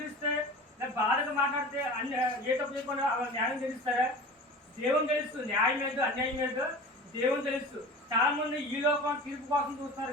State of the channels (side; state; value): both; normal; correlation 0.36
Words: బాధగా మాట్లాడితే ఏ తప్పు చేయకుండా న్యాయం తెలుస్తారా? దేవుని తెలుసు, న్యాయం ఏదో అన్యాయం ఏదో దేవుని తెలుసు. చాలా మంది ఈ లోకం తీర్పు కోసం